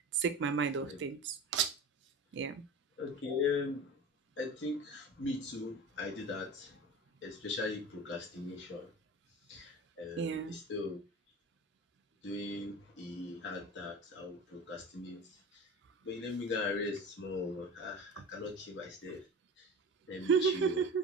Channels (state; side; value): normal; both; correlation 0.33